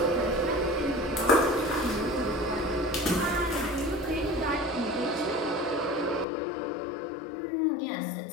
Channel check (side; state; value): right; drops out; at 6.2 s